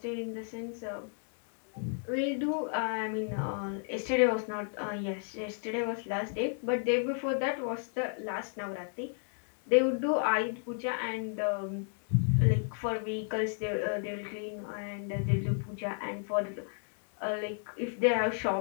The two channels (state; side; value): silent; right; 56 dB below the other